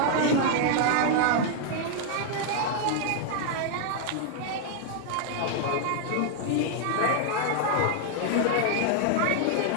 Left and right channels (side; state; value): both; different; correlation 0.00